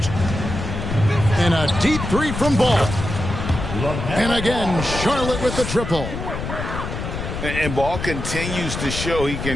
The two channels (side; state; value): left; noise; rumble, 5 dB below the sound